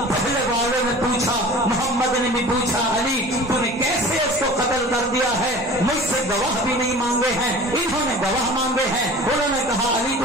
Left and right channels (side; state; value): both; normal; correlation 0.41